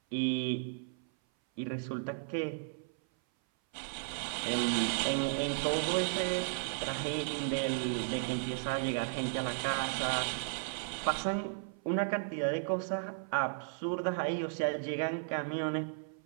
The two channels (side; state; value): left; silent; 55 dB below the other